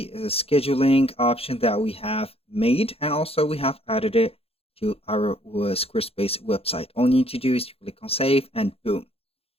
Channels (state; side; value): late; right; 0.28 ms